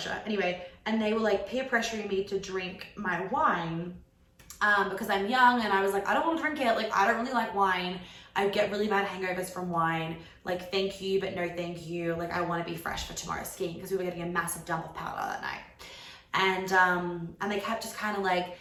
Anyway, and they were like peer pressuring me to drink my wine because I'm young, and I was like, I don't want to drink it. Like I don't really like wine. I get really bad hangovers from wine. Like thank you, but no thank you. Like I want to be fresh for tomorrow's skiing, because we were getting a massive dump of powder that night. And they kept just kind of like,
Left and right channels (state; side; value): identical; both; correlation 1.00